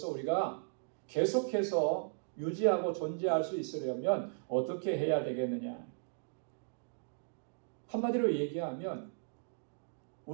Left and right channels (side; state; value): left; silent; digital silence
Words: 우리가 계속해서 유지하고 존재할 수 있으려면 어떻게 해야 되겠느냐? 한마디로 얘기하면